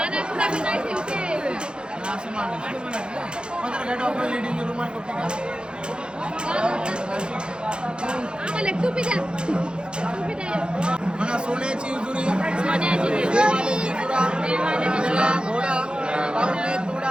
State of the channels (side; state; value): left; late; 0.051 ms